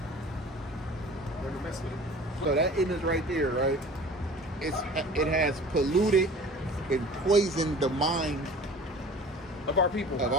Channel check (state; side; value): normal; both; correlation 0.43